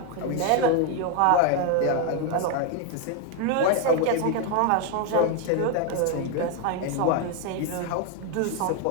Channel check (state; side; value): different; both; correlation 0.01